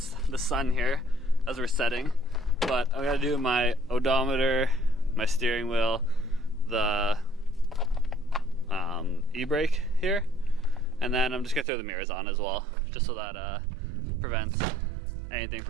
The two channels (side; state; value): left; drops out; at 11.7 s